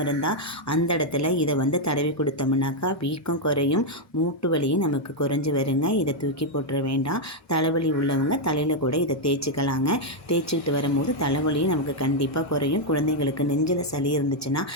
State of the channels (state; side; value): normal; both; correlation 0.00